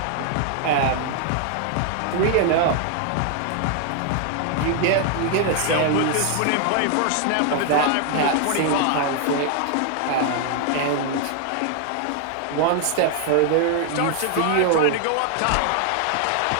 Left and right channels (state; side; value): different; both; correlation 0.00